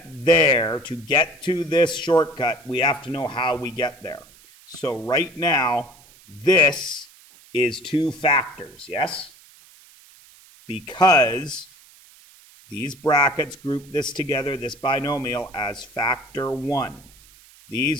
there, to get to this shortcut, we have to know how we get there. So right now, this is two factors, yes? Because these brackets group this together, this binomial, as factor 1.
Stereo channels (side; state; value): right; noise; hiss, 25 dB below the sound